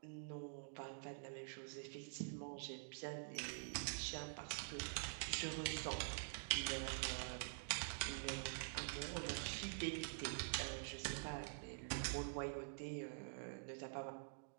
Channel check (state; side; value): silent; left; digital silence